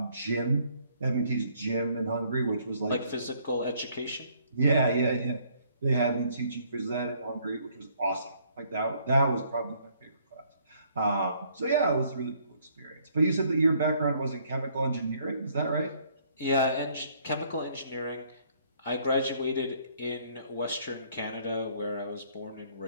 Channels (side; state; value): both; inverted; correlation -0.65